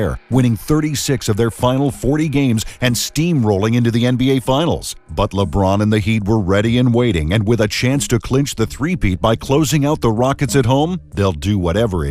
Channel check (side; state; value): both; identical; correlation 1.00